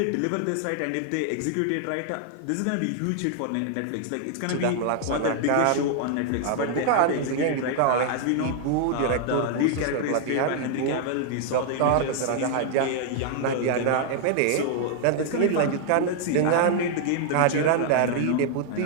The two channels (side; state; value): both; different; correlation 0.00